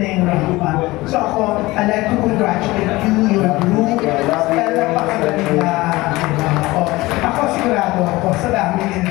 yung rampa. So ako, I'd like to congratulate you, your group. Napakagaling na. Ako sigurado ako, sa dami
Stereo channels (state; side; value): quieter; right; 20.1 dB